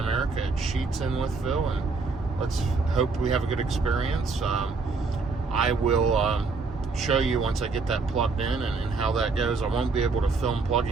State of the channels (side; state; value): left; quieter; 4.2 dB